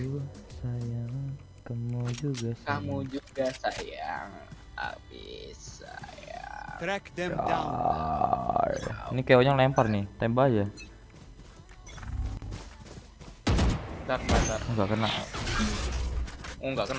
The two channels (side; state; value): both; identical; correlation 1.00